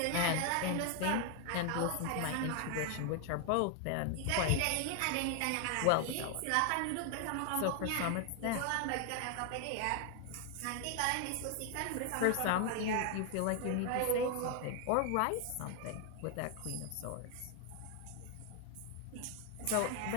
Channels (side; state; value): both; different; correlation 0.00